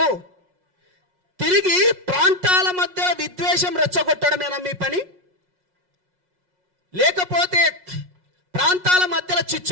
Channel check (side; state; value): left; late; 5.5 ms